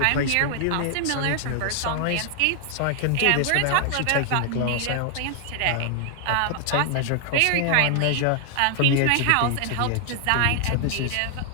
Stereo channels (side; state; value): both; different; correlation 0.00